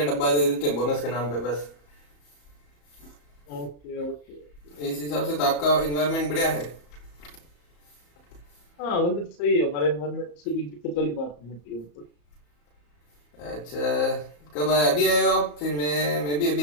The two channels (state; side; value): late; right; 34 ms